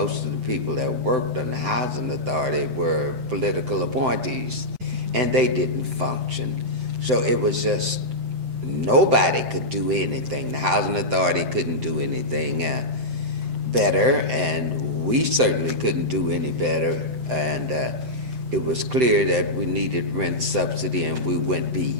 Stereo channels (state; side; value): late; left; 7.8 ms